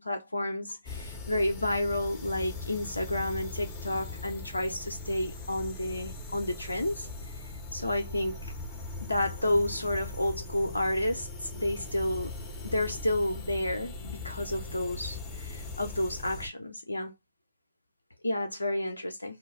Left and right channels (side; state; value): both; inverted; correlation -0.84